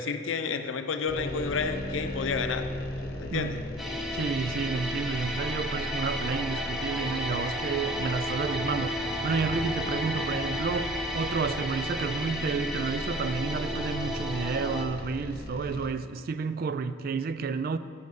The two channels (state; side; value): normal; both; correlation 0.46